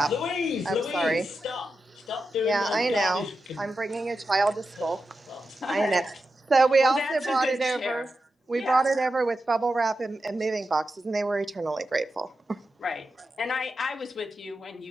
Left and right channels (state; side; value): normal; both; correlation 0.90